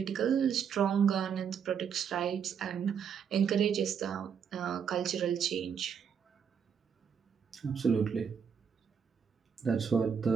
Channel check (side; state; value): left; quieter; 7.2 dB